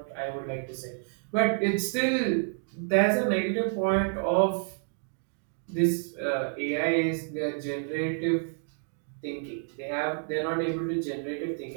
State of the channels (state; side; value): silent; left; 58 dB below the other